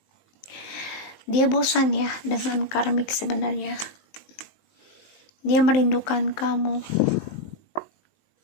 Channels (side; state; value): right; late; 19 ms